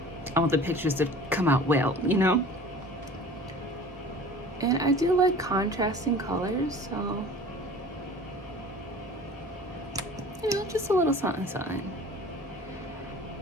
I want the pictures to come out well, you know? And I do like contrasting colors, so, you know, just a little something, something.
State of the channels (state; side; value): normal; both; correlation 0.43